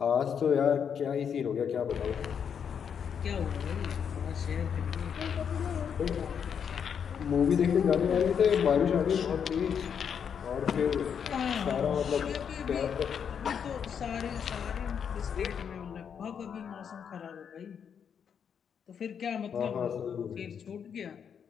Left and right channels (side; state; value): right; quieter; 7.5 dB